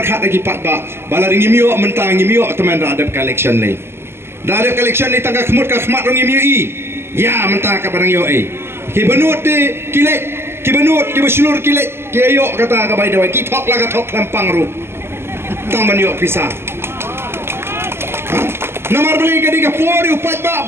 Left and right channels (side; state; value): left; late; 0.12 ms